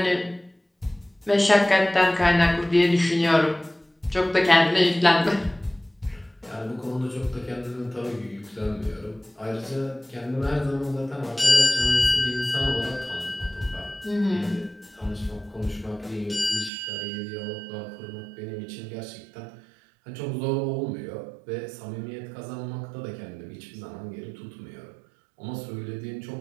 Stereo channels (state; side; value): drops out; left; at 16.7 s